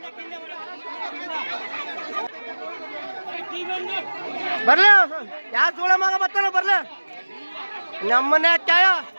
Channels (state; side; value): inverted; both; correlation -1.00